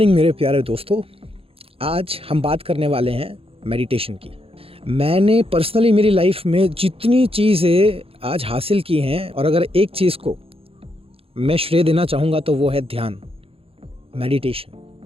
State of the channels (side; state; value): left; late; 0.27 ms